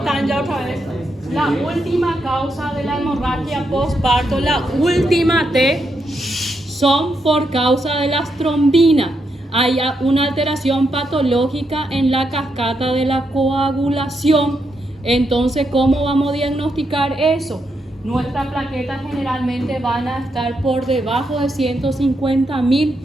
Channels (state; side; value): normal; both; correlation 0.81